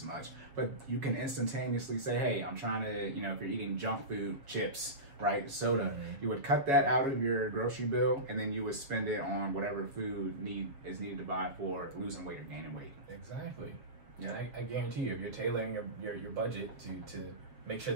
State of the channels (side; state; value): left; late; 7.1 ms